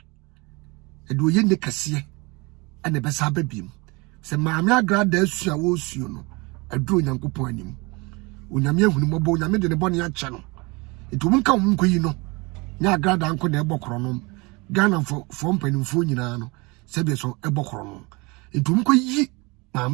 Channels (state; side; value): quieter; left; 26.4 dB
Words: edo ye ne kase ene besa babiem se maami agrada asua wo suo no edo Nyankopon anim onyame ahunu mobo onyame de ne bone ache no edo munka omunkoyi no nya agrada anko na ebokoro no Ghana for mpanimfo nyina no sebe so ebokoro no edo munkoyi